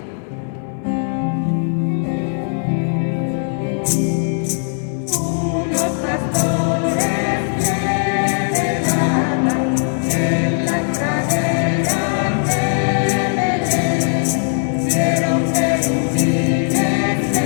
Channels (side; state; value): right; silent; 67 dB below the other